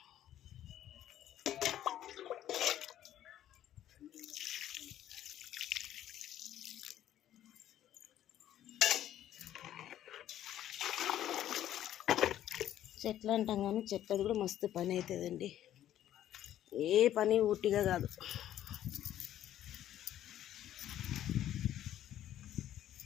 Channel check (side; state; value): right; quieter; 11.9 dB